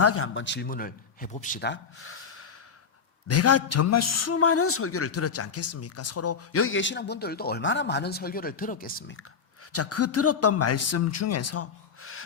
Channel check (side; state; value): right; quieter; 6.0 dB